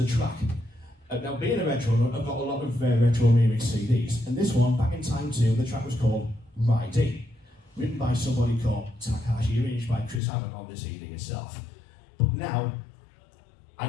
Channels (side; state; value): right; drops out; at 10.2 s